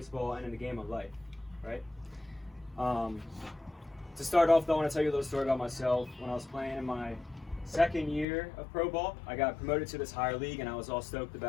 and in the game of life, right? To start off, though, I want to tell you a little story about myself. When I was playing in my second year of pro ball, I got promoted to this higher league, and I was all stoked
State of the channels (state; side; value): drops out; right; at 8.2 s